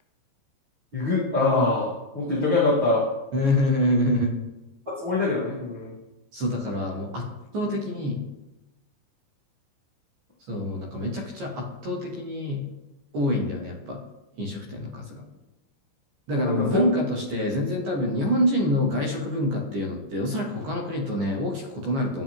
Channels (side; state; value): left; late; 14 ms